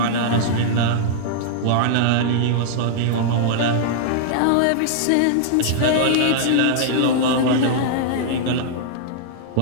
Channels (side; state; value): both; different; correlation -0.01